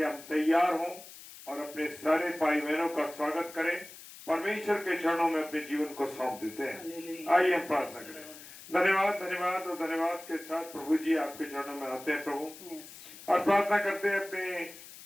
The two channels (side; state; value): left; noise; hiss, 16 dB below the sound